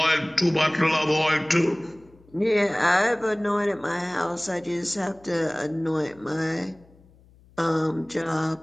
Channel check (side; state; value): left; noise; hum, 28 dB below the sound